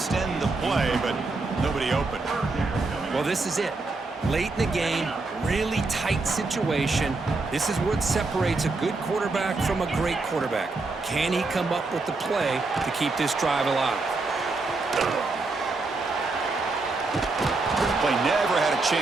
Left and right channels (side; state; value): left; quieter; 3.6 dB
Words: the play, but nobody open. Well, this is it. Late in the game, really tight situation. This is what separates a good quarterback from a great quarterback. Can he come up with the play to keep this drive alive? Play never had a